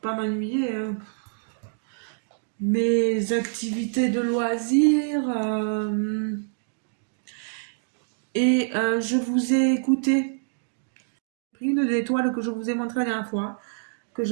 m'ennuyer, hein. Mes activités de loisirs. Je vous ai écouté. Une des toiles que je vous ai montré la dernière fois, que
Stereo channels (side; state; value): left; silent; digital silence